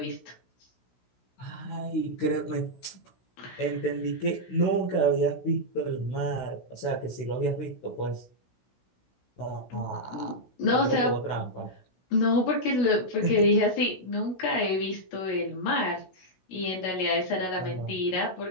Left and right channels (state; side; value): late; right; 16 ms